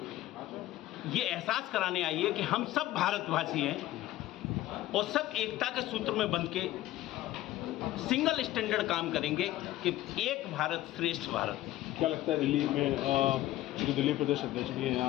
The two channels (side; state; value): right; quieter; 15.3 dB